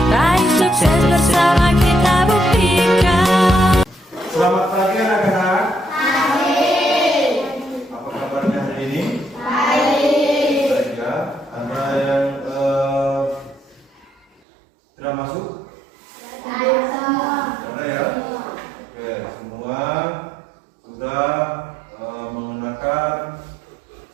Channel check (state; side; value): drops out; left; at 14.4 s